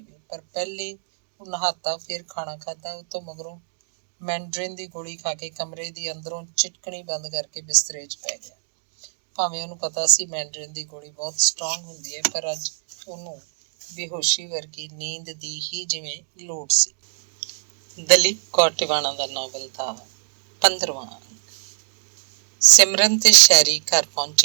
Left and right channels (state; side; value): silent; left; digital silence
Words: ਪਰ ਪਹਿਲੇ ਉਹ ਨਹਾਤਾ, ਫਿਰ ਖਾਣਾ ਖਾਧਾ। ਉਹ ਤੋਂ ਮਗਰੋਂ ਮੈਂਡਰਿਨ ਦੀ ਗੋਲੀ ਖਾ ਕੇ ਕਮਰੇ ਦੀ ਅੰਦਰੋਂ ਚਿਟਕਣੀ ਬੰਦ ਕਰਕੇ ਬਿਸਤਰੇ 'ਚ ਪੈ ਗਿਆ। ਭਾਵੇਂ ਉਹਨੂੰ ਪਤਾ ਸੀ ਮੈਂਡਰਿਨ ਦੀ ਗੋਲੀ ਬਹੁਤ ਸਟਰੋਂਗ ਹੁੰਦੀ ਹੈ, ਪਰ ਅੱਜ ਉਹਨੂੰ ਬੇਹੋਸ਼ੀ ਵਰਗੀ ਨੀਂਦ ਦੀ ਹੀ ਜਿਵੇਂ ਲੋੜ ਸੀ। ਦਲੀਪ ਕੌਰ ਟਿਵਾਣਾ ਦਾ ਨਾਵਲ ਦਾ 15ਵਾਂ ਅੰਕ। ਸਿਮਰਨ ਤੇ ਸ਼ੈਰੀ ਘਰ